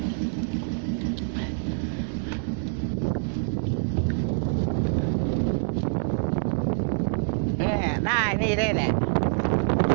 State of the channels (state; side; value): silent; left; digital silence